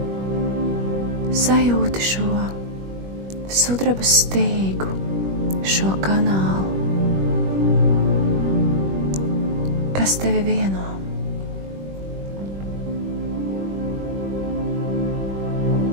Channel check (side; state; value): left; late; 21 ms